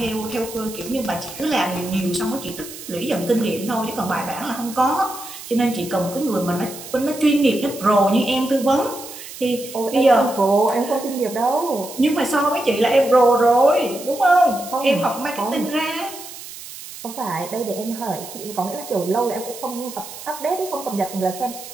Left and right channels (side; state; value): right; noise; hiss, 13 dB below the sound